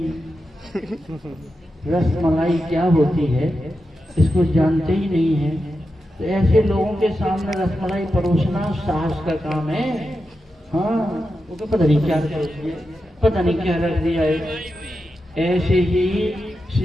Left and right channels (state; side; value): normal; both; correlation 0.89